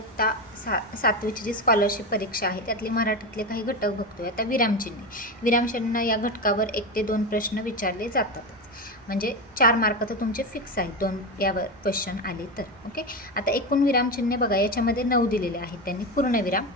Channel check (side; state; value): right; noise; rumble, 29 dB below the sound